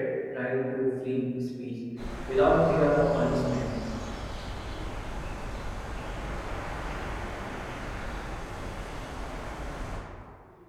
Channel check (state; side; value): identical; both; correlation 1.00